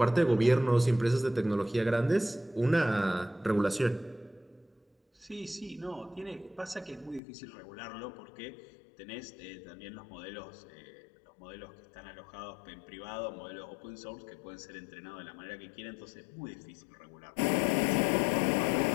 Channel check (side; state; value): right; drops out; at 7.2 s